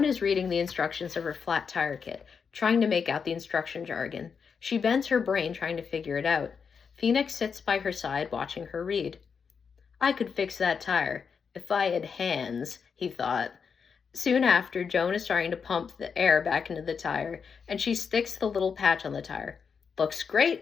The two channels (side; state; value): right; quieter; 6.1 dB